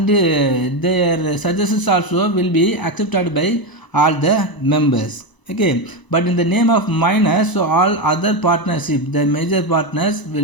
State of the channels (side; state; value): right; late; 1.0 ms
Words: their suggestions also will be accepted by all the members. Okay, but in the name of minors, so all other partnership, the major partners